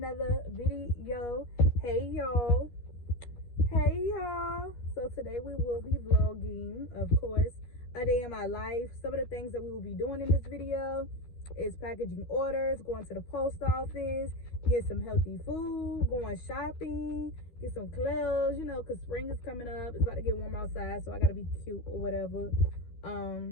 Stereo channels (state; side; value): late; right; 13 ms